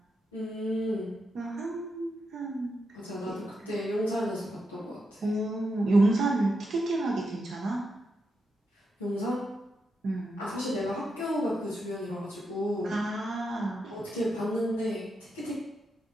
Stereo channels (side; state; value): both; normal; correlation 0.84